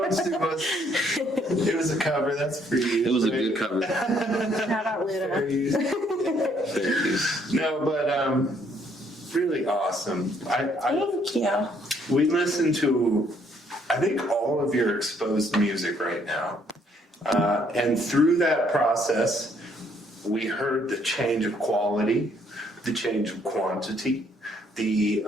sue us. It was a cover, that's for you. It was a good cover. Shout out For Luda. you. Thank you. No, but really awesome. Thank you. We listened to, I think, all of your exposed music right now. And through that process, we heard the change of quality, the change of quantity, the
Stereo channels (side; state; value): both; normal; correlation 0.67